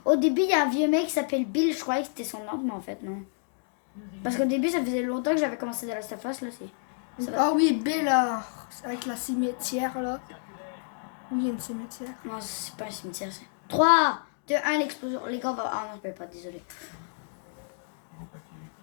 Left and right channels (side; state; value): right; silent; digital silence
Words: Au début, il y a un vieux mec qui s'appelle Bill. Je croyais que c'était son oncle, mais en fait, non. Parce qu'au début, ça faisait longtemps que j'avais commencé The Last of Us, là, c'est. Ça va. Ah oui, Bella, avec la cimetière, là. Oui, il y a une cimetière. Non, c'est pas un cimetière, c'est. 3, 2, 1, l'explosion. Les gars, va. Ah non, je peux pas, désolé.